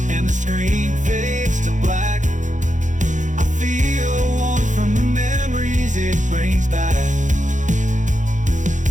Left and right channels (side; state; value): left; late; 0.36 ms